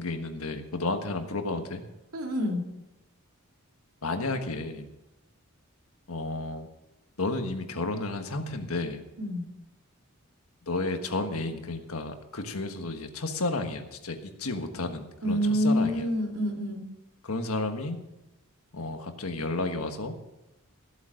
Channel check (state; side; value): normal; both; correlation 0.33